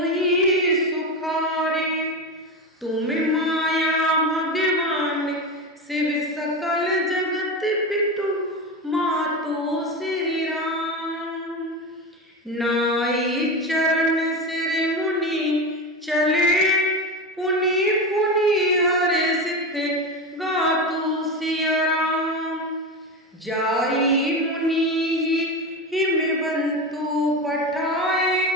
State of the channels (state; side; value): normal; both; correlation 0.20